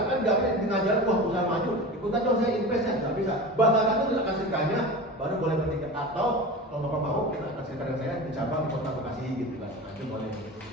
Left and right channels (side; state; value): both; normal; correlation 0.31